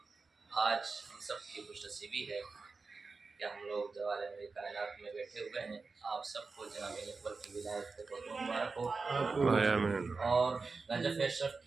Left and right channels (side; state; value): left; quieter; 4.2 dB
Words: آج ہم سب کی خوش نصیبی ہے کہ ہم لوگ دوالے میں کائنات میں بیٹھے ہوئے ہیں۔ آپ سب کو جناب اکبر کی ولایت سے بہت مبارک ہو، اور نجف اشرف